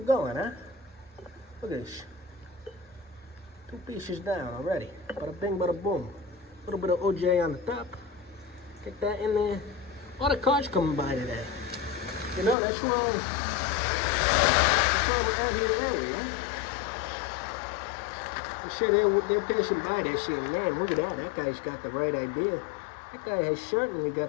going, huh? Look at this. 2 pieces down already. Bada bing, bada boom. A little bit of OJ on the top. Get that in there. A lot of cars coming by today. You know, that's why we're out here early, huh? I'm sure they're passing by there saying, man, look at that. That guy's got the right idea. That guy has certainly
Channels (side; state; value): right; drops out; at 12.6 s